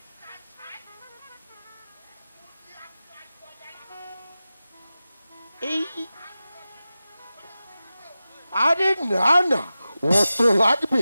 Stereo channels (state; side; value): inverted; both; correlation -0.94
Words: এই আরে না না, অত